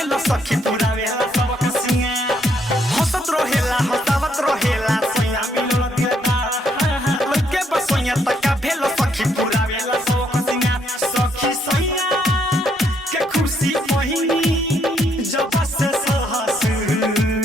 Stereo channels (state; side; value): normal; both; correlation 0.73